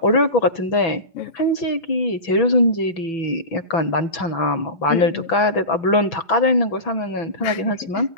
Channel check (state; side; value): late; right; 6.0 ms